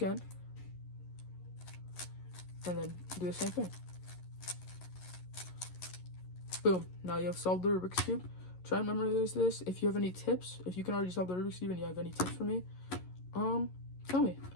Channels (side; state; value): right; late; 11 ms